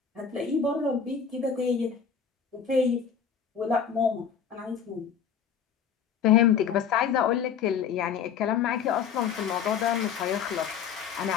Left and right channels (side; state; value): right; quieter; 7.3 dB